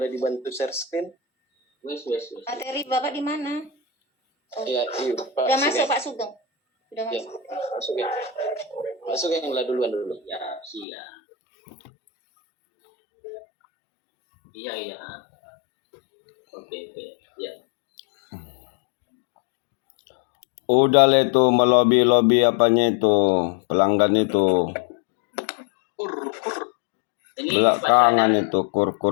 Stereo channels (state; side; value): drops out; right; at 10.9 s